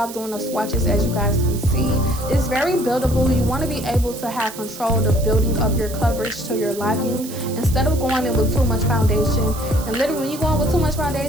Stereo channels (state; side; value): noise; right; hiss, 13 dB below the sound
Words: doing the swatches. As you guys can see, it's very buildable. You want to be able to have control of building up your coverage to your liking instead of going in with too much foundation. And literally, when you go in with too much